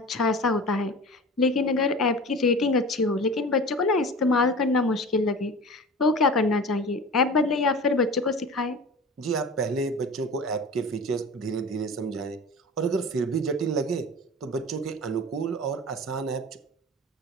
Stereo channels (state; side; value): normal; both; correlation 0.36